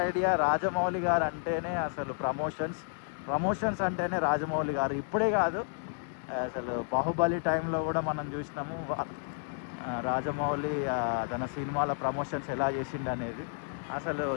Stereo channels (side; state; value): right; silent; digital silence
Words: ఐడియా. రాజమౌళి గారు అంటేనే అసలు ప్రమోషన్స్ అంటేనే రాజమౌళి గారు. ఇప్పుడే కాదు, అసలు బాహుబలి టైంలో కూడా మనం చూసినాము రాజమౌళి తన సినిమాల ప్రమోషన్స్ ఎలా చేసిండు అనేది. అసలు